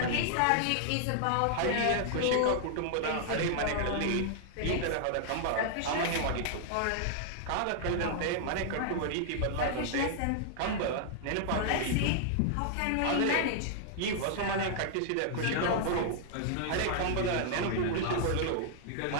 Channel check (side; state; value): both; different; correlation -0.01